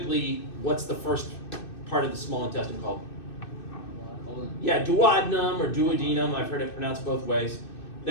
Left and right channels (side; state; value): right; late; 2.6 ms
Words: what's the first part of the small intestine called? Yeah, duodenum or duodenum. I've heard it pronounced both ways.